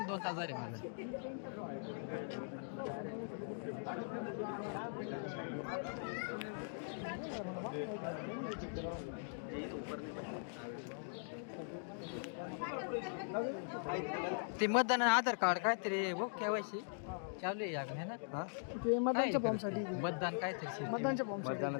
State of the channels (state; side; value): silent; right; digital silence